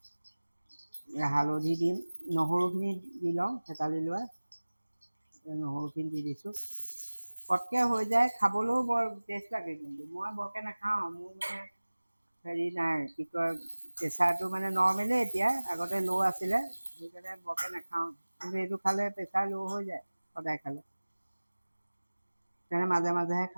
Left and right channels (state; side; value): inverted; both; correlation -1.00